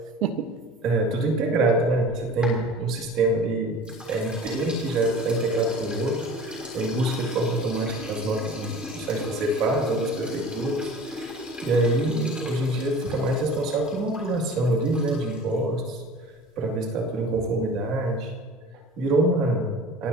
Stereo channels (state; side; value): normal; both; correlation 0.41